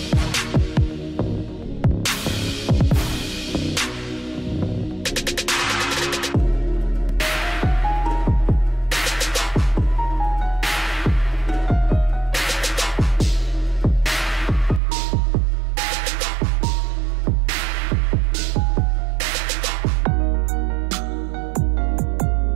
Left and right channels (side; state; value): left; drops out; at 14.8 s